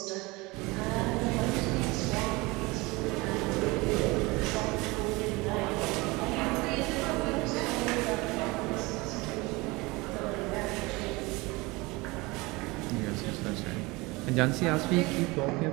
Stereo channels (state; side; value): quieter; left; 23.7 dB